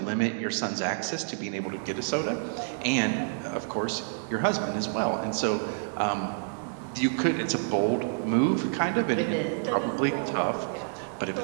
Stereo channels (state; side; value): silent; left; digital silence